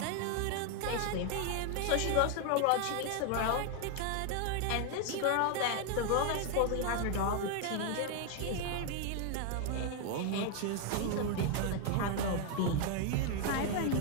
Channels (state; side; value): different; both; correlation 0.01